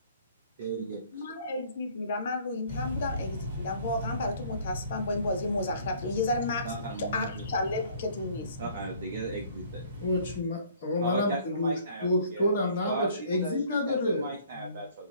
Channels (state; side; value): inverted; both; correlation -0.56